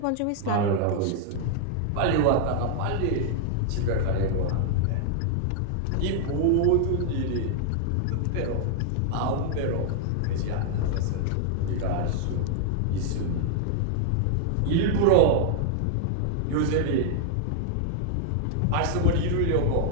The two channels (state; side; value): different; both; correlation -0.01